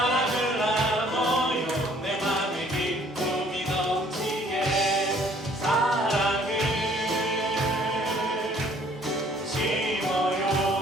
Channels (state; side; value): normal; both; correlation 0.59